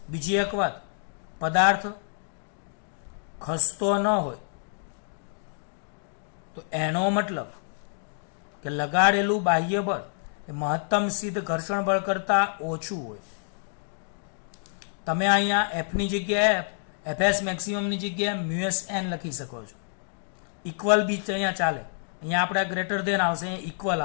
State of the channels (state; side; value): silent; right; digital silence